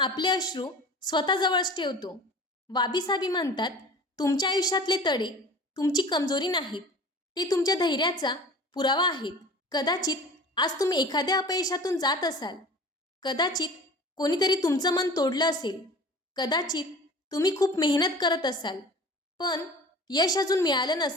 अश्रू स्वतःजवळच ठेवतो. वाबीसाबी म्हणतात, तुमच्या आयुष्यातले तडे तुमची कमजोरी नाहीत, ते तुमच्या धैर्याचा पुरावा आहेत. कदाचित आज तुम्ही एखाद्या अपयशातून जात असाल, कदाचित कोणीतरी तुमचं मन तोडलं असेल, कदाचित तुम्ही खूप मेहनत करत असाल पण यश अजून मिळालं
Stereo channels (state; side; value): normal; both; correlation 0.41